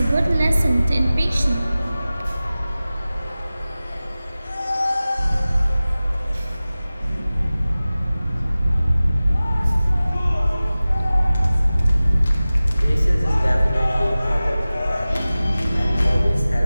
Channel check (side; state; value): both; inverted; correlation -0.97